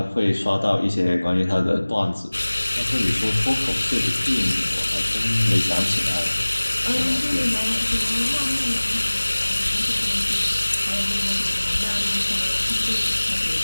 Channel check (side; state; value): both; inverted; correlation -1.00